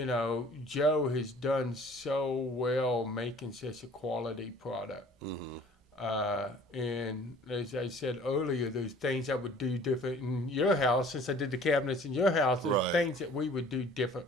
know, Joe has done so well making such a quality product. And as I said earlier, there's things I would do different in your house. Since I did the cabinets in your house, there's things that we would do different.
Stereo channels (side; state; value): both; normal; correlation 0.51